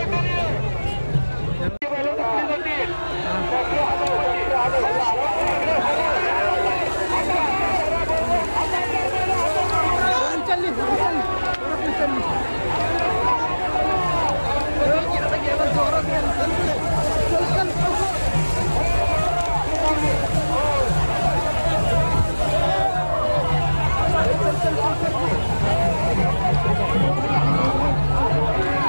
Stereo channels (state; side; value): inverted; both; correlation -1.00